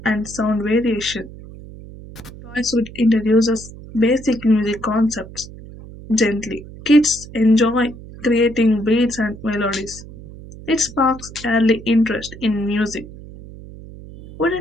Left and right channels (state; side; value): noise; right; hum, 16 dB below the sound